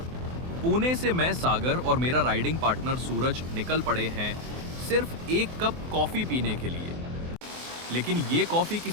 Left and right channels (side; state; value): left; late; 24 ms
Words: पुणे से मैं सागर और मेरा राइडिंग पार्टनर सूरज निकल पड़े हैं सिर्फ एक कप कॉफी पीने के लिए। लेकिन ये कॉफी